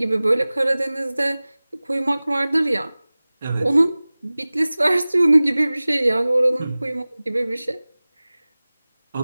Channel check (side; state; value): both; inverted; correlation -0.99